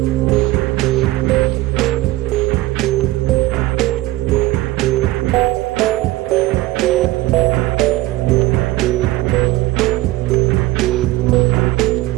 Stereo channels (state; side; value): quieter; left; 18.1 dB